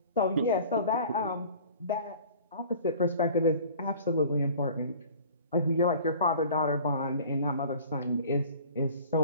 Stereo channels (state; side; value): inverted; both; correlation -0.46